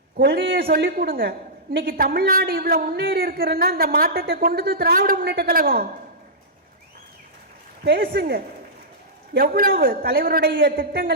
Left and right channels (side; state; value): both; normal; correlation -0.15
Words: கொள்கையை சொல்லி கொடுங்க. இன்னைக்கு தமிழ்நாடு இவ்வளவு முன்னேறி இருக்கிறன்னா இந்த மாற்றத்தை கொண்டது திராவிட முன்னேற்ற கழகம். பேசுங்க, எவ்வளவு தலைவருடைய